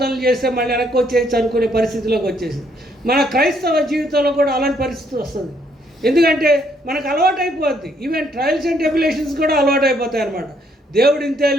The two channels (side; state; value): both; normal; correlation 0.69